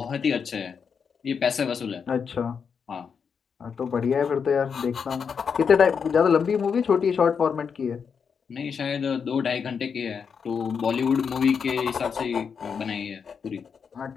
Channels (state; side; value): quieter; right; 6.4 dB